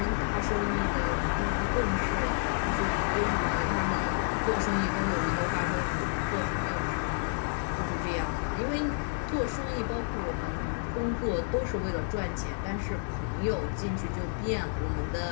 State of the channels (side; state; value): right; silent; 58 dB below the other